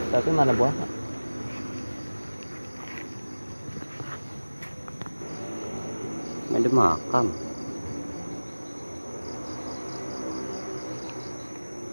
Tapi mana buahnya? Ini ada makam.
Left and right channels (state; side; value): inverted; both; correlation -1.00